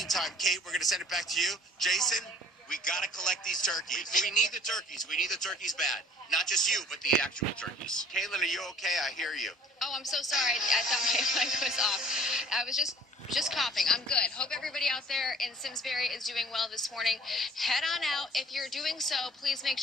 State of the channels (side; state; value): both; normal; correlation 0.53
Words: Kate, we're going to send it back to you. Jason, we got to collect these turkeys. We need the turkeys. We need the turkeys bad. Not just you, but the actual turkeys. Caitlin, are you okay? I hear you. Oh, I'm so sorry. I thought my mic was off. I was just coughing. I'm good. Hope everybody out there in Simsbury is doing well this morning. Head on out. If you're doing so, please make